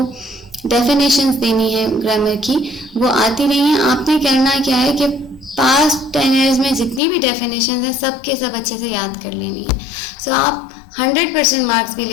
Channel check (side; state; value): right; drops out; at 7.0 s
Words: डेफिनेशंस देनी है ग्रामर की, वो आती नहीं है। आपने करना क्या है कि पास्ट 10 ईयर्स में जितनी भी डेफिनेशन है सब के सब अच्छे से याद कर लेनी है। सो आप 100% मार्क्स भी